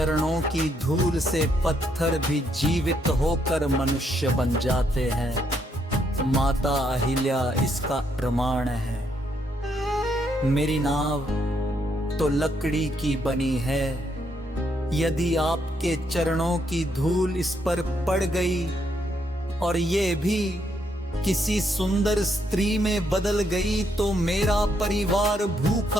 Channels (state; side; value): normal; both; correlation 0.75